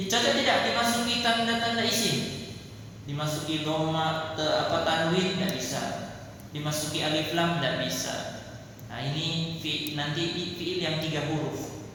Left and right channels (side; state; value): both; identical; correlation 1.00